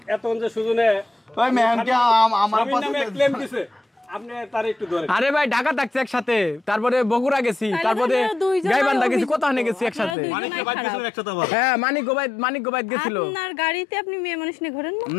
এতক্ষণ যে সুজনে ওই ম্যামকে আমার পাশে ক্লেম দিছে, আপনি তার একটু ধরেন। আরে ভাই ঢাকা থাকছে একসাথে, তারপরে বগুড়া গেছি, তারপরে গাইবান্ধা গেছি, কোথাও গেছি একসাথে। হ্যাঁ, মানিক গোবাইদ গেছিল। আপনার গাড়িতে আপনি মেয়ে মানুষ নিয়ে ঘোরেন না?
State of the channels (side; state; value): right; drops out; at 10.2 s